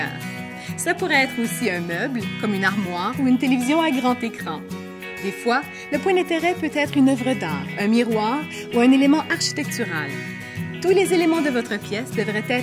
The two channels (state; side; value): identical; both; correlation 1.00